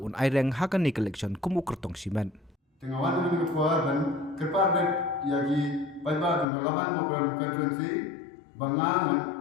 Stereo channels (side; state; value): right; drops out; at 6.5 s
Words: un aireng hakani collection kumu kertong simen tengawan dengan ketua dan kerpar yagi paiba dengan lawan program constituency bangang